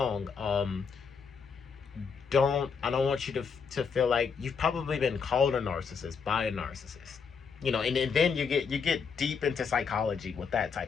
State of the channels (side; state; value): right; quieter; 5.9 dB